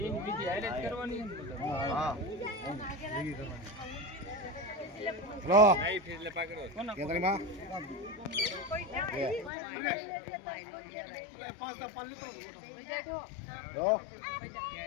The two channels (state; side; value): drops out; right; at 9.5 s